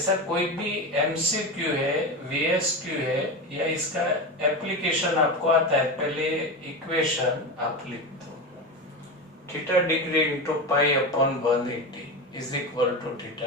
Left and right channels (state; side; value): normal; both; correlation 0.20